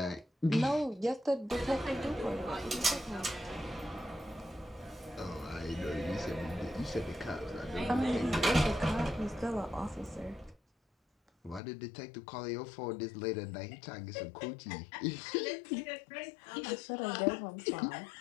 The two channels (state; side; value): drops out; right; at 11.6 s